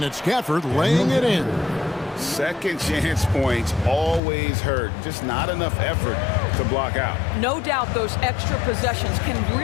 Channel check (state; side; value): drops out; right; at 4.2 s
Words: it's Gafford laying it in. Second chance points always hurt. Just not enough effort to block out. No doubt those extra possessions can